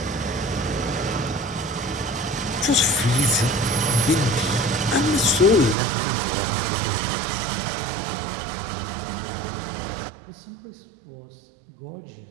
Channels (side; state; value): left; drops out; at 5.8 s